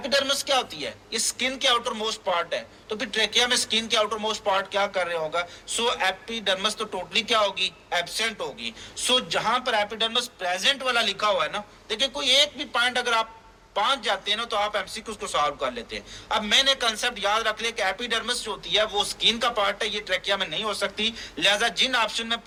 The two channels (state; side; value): identical; both; correlation 1.00